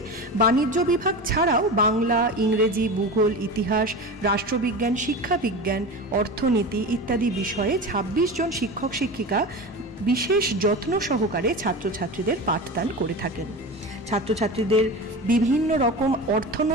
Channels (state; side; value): normal; both; correlation 0.28